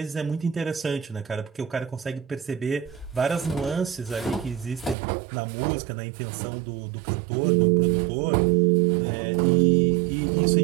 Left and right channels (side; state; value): left; drops out; at 5.0 s